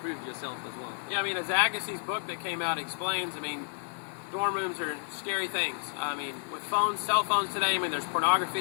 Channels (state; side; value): silent; right; 55 dB below the other